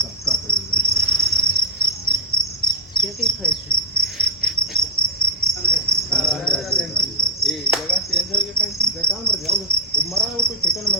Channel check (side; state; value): both; normal; correlation -0.09